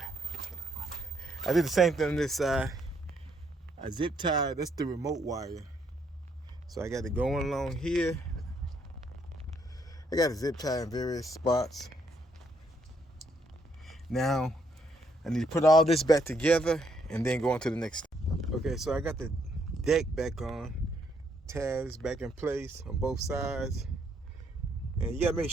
I did the same thing on this side. I zip tied, that's the remote wire. So I got it going along here. I got it zip tied in various spots. Now I need to put all this back together and then go on to the next step. Okay, so I got the deck back on, tabs back in place on both sides. And you gotta make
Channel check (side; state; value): both; normal; correlation 0.72